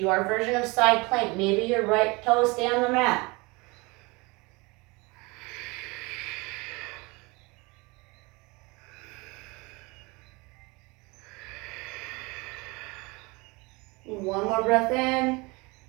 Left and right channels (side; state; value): left; quieter; 26.0 dB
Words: version of side plank. Maybe your right toes stay on the mat. One more breath in.